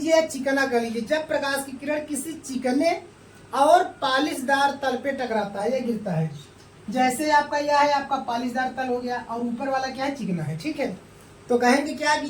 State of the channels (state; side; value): identical; both; correlation 1.00